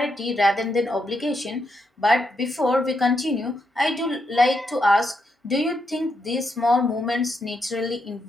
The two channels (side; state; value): both; normal; correlation 0.81